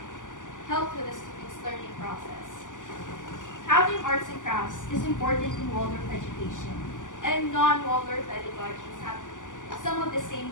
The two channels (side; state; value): right; late; 0.87 ms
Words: help with the students' learning process. Having arts and crafts is important in Waldorf education, and non-Waldorf pedagogies have some of the same